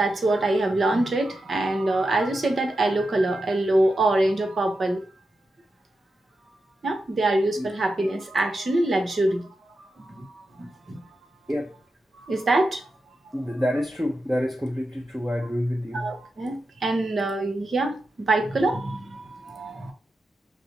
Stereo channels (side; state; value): both; normal; correlation 0.89